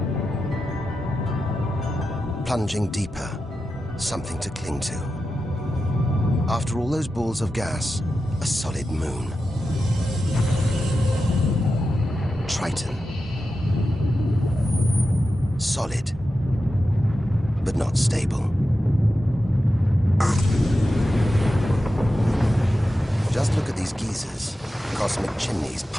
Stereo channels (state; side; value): normal; both; correlation 0.91